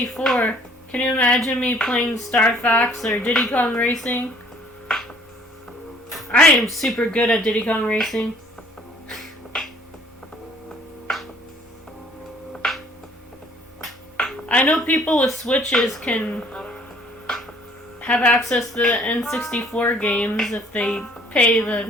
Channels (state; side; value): normal; both; correlation 0.57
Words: Can you imagine me playing Star Fox or Diddy Kong Racing? I am super good at Diddy Kong Racing. I know people with Switches can have access to the N64 games if they pay